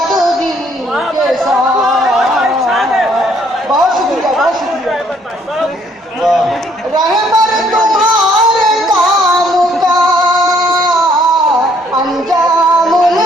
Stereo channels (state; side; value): normal; both; correlation 0.65